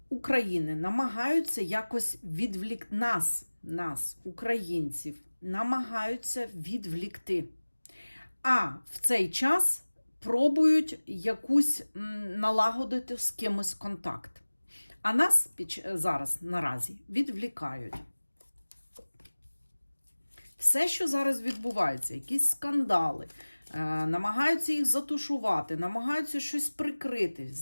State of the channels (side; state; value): both; inverted; correlation -1.00